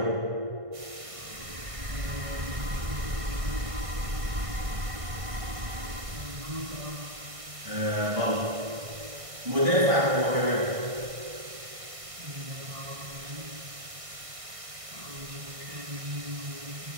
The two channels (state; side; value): late; left; 1.6 ms